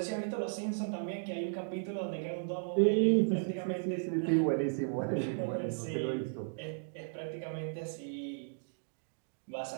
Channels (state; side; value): silent; left; digital silence